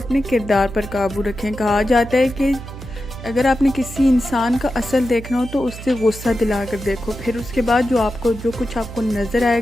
किरदार पर काबू रखें। कहा जाता है कि अगर आपने किसी इंसान का असल देखना हो तो उससे गुस्सा दिला कर देखो, फिर उसके बाद जो कुछ आपको नज़र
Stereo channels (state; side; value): noise; right; hum, 12 dB below the sound